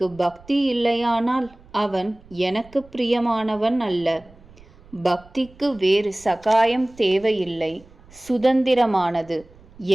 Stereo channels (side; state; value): right; noise; rumble, 25 dB below the sound